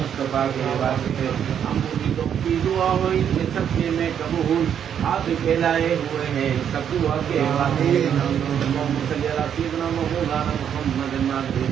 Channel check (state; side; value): quieter; left; 8.7 dB